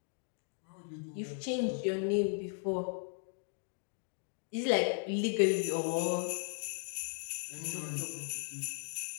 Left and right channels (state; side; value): silent; right; 53 dB below the other